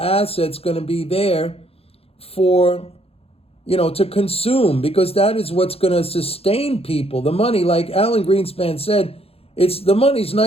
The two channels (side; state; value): right; late; 0.28 ms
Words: going to be there for, to consume? Because that is what's going to sustain people. The money, like Alan Greenspan said, the money's